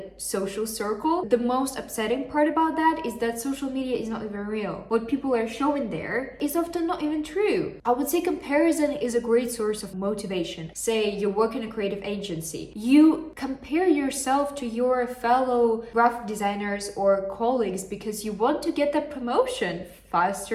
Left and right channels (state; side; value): identical; both; correlation 1.00